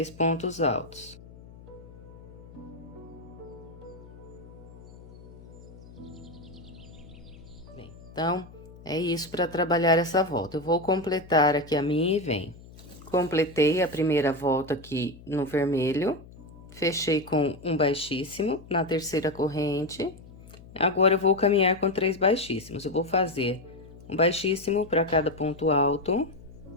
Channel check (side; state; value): left; noise; hum, 19 dB below the sound